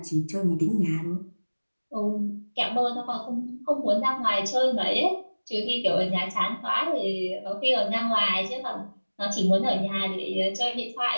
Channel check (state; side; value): inverted; both; correlation -1.00